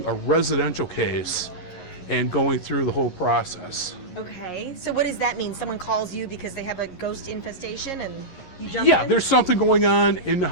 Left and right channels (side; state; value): right; late; 11 ms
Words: a residential case and going through the whole process. Okay, so what does that mean? Someone calls you because they have a ghost infestation and you jump in? Yeah, there's something going on in the